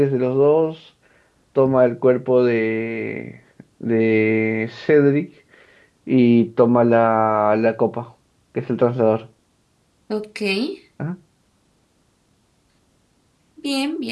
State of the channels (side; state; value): both; identical; correlation 1.00